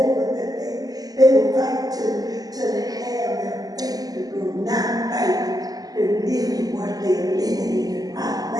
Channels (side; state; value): left; late; 0.18 ms